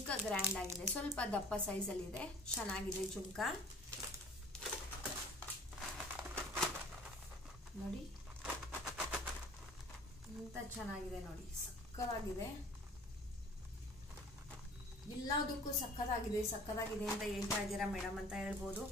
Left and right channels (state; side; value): normal; both; correlation 0.48